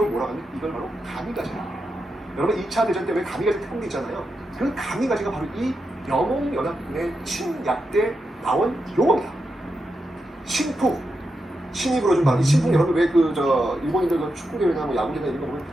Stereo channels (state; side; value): normal; both; correlation 0.87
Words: 뭐라고 하냐면 이걸 바로 가미가지라고 해요. 여러분 2차 대전 때 왜 가미가지 태풍이 있잖아요. 그 가미가지가 바로 이 영몽연합군의 침략 때 나온 용어입니다. 신풍. 신이 불어준 바로 이 신풍. 여러분 왜 일본인들 축구대회나 뭐 야구대회나 이런 거 보면